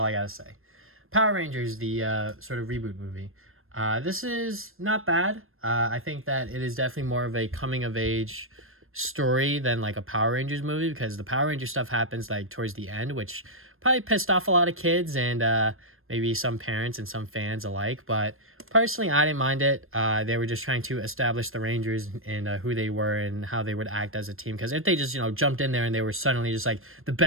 I gotta say. Power Rangers, the sort of reboot movie. This is not bad. I think that it is definitely more of a coming of age story than like a Power Rangers movie, because the Power Ranger stuff happens like towards the end, which probably pissed off a lot of kids and maybe some parents and some fans alike. But personally, I didn't mind it. They were just trying to establish the Rangers and who they were and how they would act as a team. Because if they just, you know, jumped in there and they were suddenly just like the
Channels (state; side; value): late; left; 0.60 ms